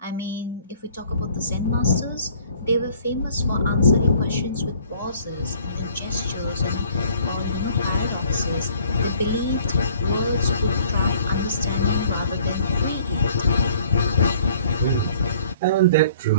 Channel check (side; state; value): both; inverted; correlation -0.56